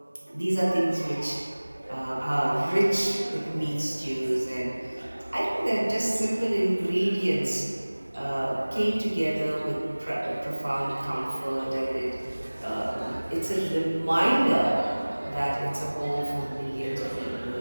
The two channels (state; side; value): inverted; both; correlation -1.00